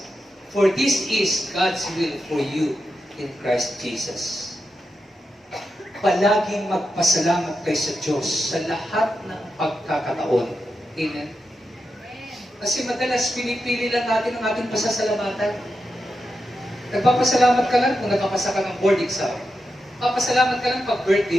for this is God's will for you in Christ Jesus. Palaging magpasalamat kayo sa Diyos sa lahat ng pagkakataon. Amen? Kasi madalas pinipili lang natin ang ating pasasalamatan. Nagpapasalamat ka lang kung nakapasa ka ng board exam. Nagpapasalamat ka lang pag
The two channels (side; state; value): both; normal; correlation 0.88